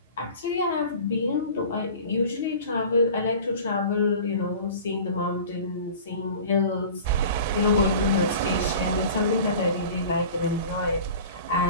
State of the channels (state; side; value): inverted; both; correlation -0.41